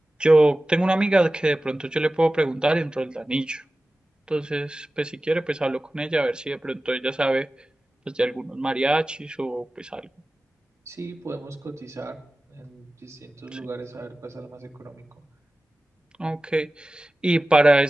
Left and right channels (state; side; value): normal; both; correlation 0.96